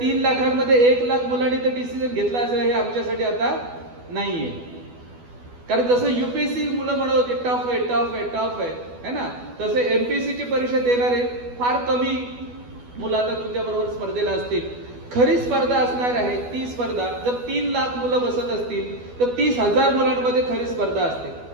लाखांमध्ये 1 लाख मुलांनी ते डिसिजन घेतला असेल हे आमच्यासाठी आता नाहीये. कारण जसं युपीएससी मुलं म्हणत होते टफ आहे टफ आहे टफ आहे ना, तसे एमपीएससीची परीक्षा देणारे फार कमी मुलं आता तुमच्या बरोबर स्पर्धेला असतील. खरी स्पर्धा असणार आहे ती स्पर्धा, जर 3 लाख मुलं बसत असतील तर 30,000 मुलांमध्ये खरी स्पर्धा असते.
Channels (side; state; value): left; late; 12 ms